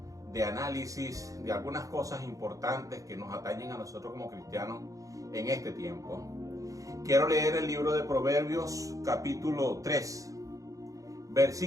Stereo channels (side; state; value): left; late; 0.16 ms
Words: análisis de algunas cosas importantes que nos atañen a nosotros como cristianos en este tiempo. Quiero leer el libro de Proverbios capítulo 3,